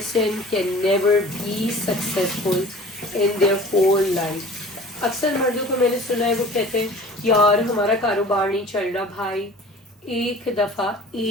can never be successful in their whole life. اکثر مردوں کو میں نے سنا ہے وہ کہتے ہیں یار ہمارا کاروبار نہیں چل رہا. بھائی ایک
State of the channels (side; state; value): both; normal; correlation 0.44